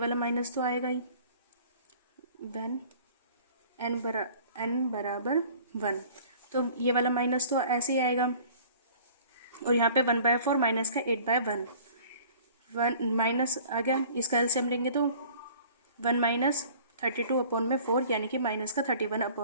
माइनस तो आएगा ही, वन n बराबर 1, तो ये वाला माइनस तो ऐसे ही आएगा, और यहाँ पे 1/4 माइनस का 8/1, 1 माइनस आ गया, इसका एलसीएम लेंगे तो 1 माइनस 32 अपॉन में 4, यानी कि माइनस का 31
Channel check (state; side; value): inverted; both; correlation -0.49